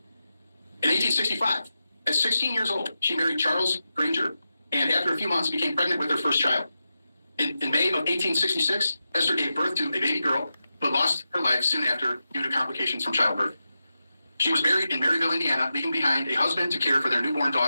In 1865, at 16 years old, she married Charles Granger, and after a few months became pregnant with her first child. In May of 1866, Esther gave birth to a baby girl, but lost her life soon after due to complications from childbirth. She was buried in Maryville, Indiana, leaving behind a husband to care for their newborn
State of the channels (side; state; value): both; inverted; correlation -0.91